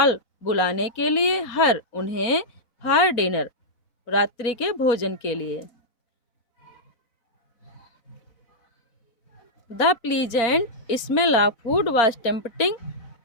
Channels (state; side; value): late; right; 4.0 ms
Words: बुलाने के लिए। हर, उन्हें। फॉर डिनर, रात्रि के भोजन के लिए। The pleasant smell of food was tempting